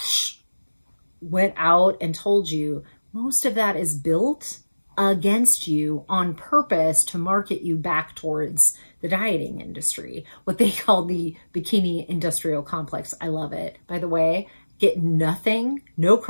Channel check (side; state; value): both; inverted; correlation -1.00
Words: went out and told you most of that is built against you on purpose to market you back towards the dieting industry, what they call the bikini industrial complex. I love it. By the way, get nothing, no